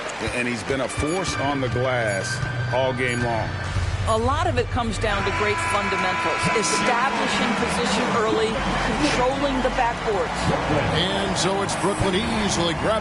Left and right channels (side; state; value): both; identical; correlation 1.00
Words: And he's been a force on the glass all game long. A lot of it comes down to great fundamentals. Establishing position early, controlling the backboards. And so it's Brooklyn easily